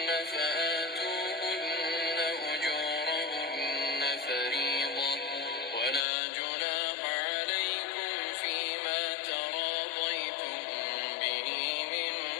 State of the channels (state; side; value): drops out; right; at 6.1 s